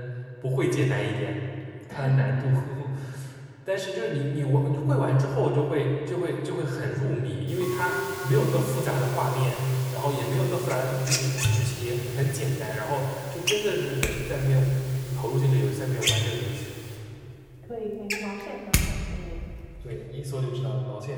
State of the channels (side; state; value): both; identical; correlation 1.00